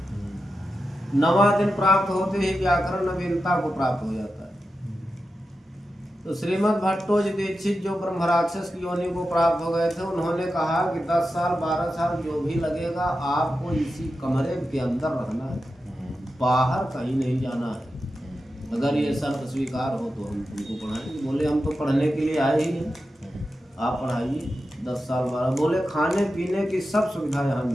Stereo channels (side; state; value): both; normal; correlation 0.91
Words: 9वां दिन प्राप्त होते ही व्याकरण नवीनता को प्राप्त हो जाता है। तो श्रीमद् भट्टोजी दीक्षित जो ब्रह्मराक्षस की योनि को प्राप्त हो गए थे, उन्होंने कहा कि 10 साल 12 साल जो भी लगेगा, आपको इसी कमरे के अंदर रहना है, बाहर कहीं नहीं जाना है। अगर ये शर्त स्वीकार हो तो हम तुमको पढ़ाएंगे। बोले हम तो पढ़ने के लिए आए ही हैं, आप पढ़ाइए। 10 साल 12। बोले खाने पीने की सब सुविधा यहाँ